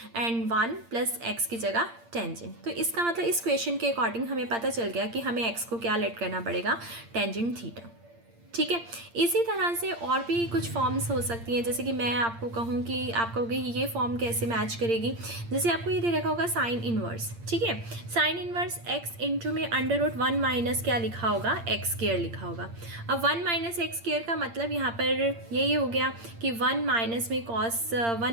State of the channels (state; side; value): late; left; 8.7 ms